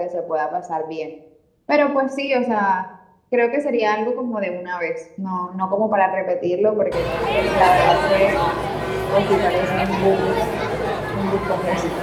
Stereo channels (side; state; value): both; identical; correlation 1.00